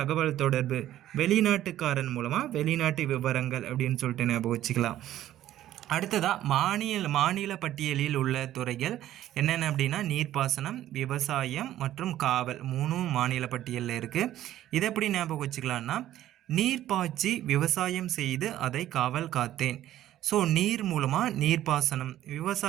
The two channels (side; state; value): left; quieter; 13.0 dB